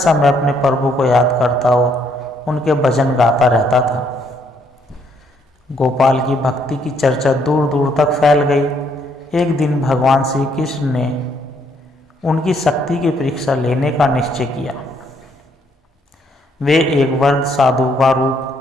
अपने प्रभु को याद करता और उनके भजन गाता रहता था। गोपाल की भक्ति की चर्चा दूर दूर तक फैल गई। एक दिन भगवान श्री कृष्ण ने उनकी शक्ति की परीक्षा लेने का निश्चय किया। वे एक वृद्ध साधु का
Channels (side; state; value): both; normal; correlation 0.70